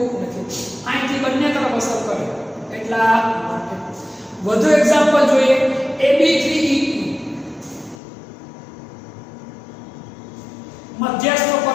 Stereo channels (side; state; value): right; drops out; at 8.0 s